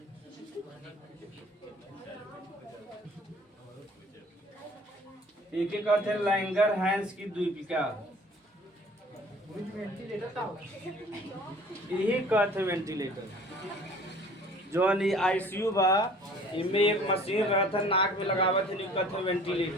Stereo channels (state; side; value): normal; both; correlation 0.49